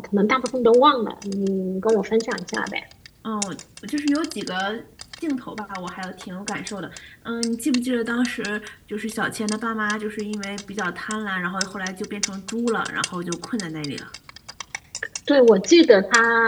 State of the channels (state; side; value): identical; both; correlation 1.00